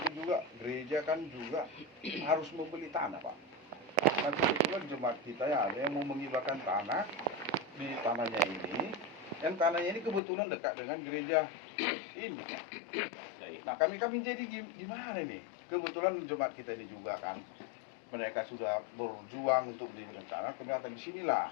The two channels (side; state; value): right; drops out; at 10.2 s